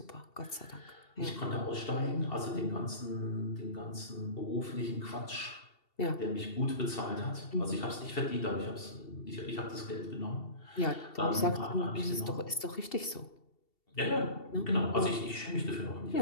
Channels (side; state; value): right; late; 2.7 ms